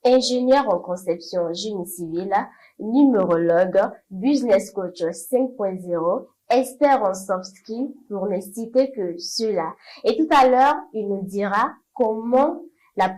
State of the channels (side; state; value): both; identical; correlation 1.00